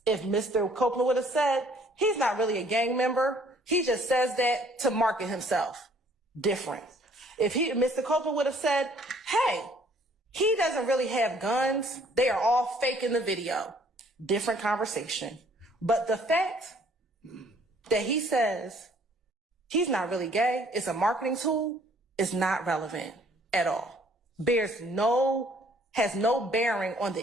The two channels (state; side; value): normal; both; correlation 0.60